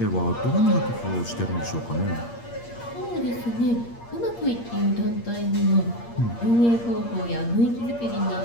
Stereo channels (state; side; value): late; right; 8.6 ms